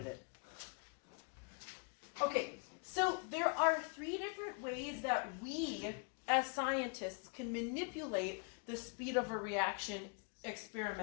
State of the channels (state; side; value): quieter; right; 38.1 dB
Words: it. Okay, so there are 3 different ways that we, as scientists, can manipulate the speed of a reaction